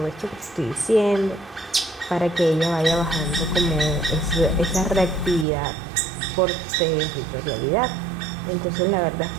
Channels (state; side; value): drops out; left; at 5.5 s